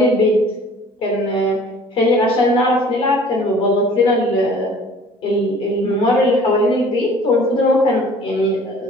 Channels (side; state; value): both; normal; correlation 0.50